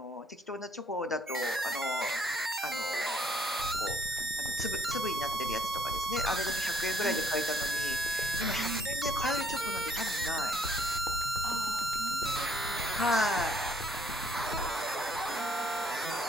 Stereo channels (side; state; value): both; normal; correlation 0.66